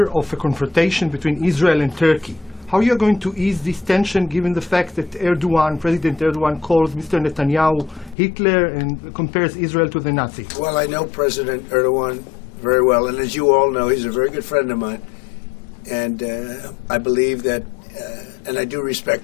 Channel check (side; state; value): right; drops out; at 8.2 s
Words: of a confrontation between Israel and Turkey. How are you going to ease this tension given the fact that President Erdogan calls Mr. Netanyahu Hitler and compares Israel to the Nazis? Well, I know President Erdogan very well. And as you all know, he's a very good friend of mine. And I believe that, and I do